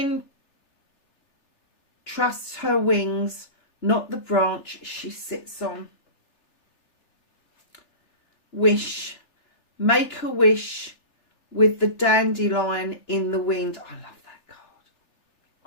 trusts her wings, not the branch she sits on. Wish. Make a wish with the dandelion in the wind. I love that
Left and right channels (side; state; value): right; late; 3.4 ms